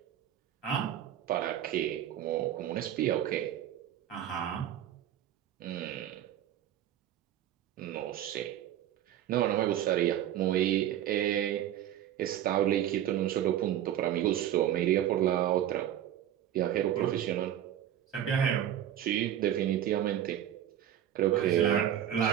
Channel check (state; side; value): quieter; left; 11.2 dB